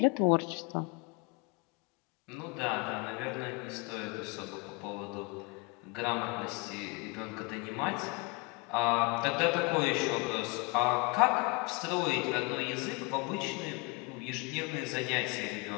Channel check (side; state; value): right; quieter; 27.5 dB